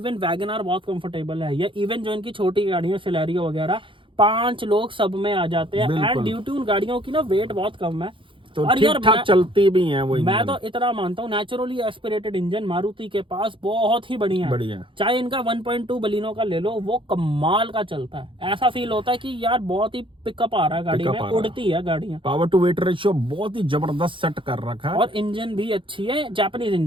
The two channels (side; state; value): left; late; 0.25 ms